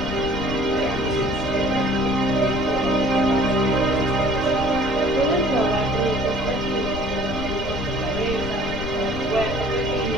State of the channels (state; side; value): noise; left; rumble, 8 dB below the sound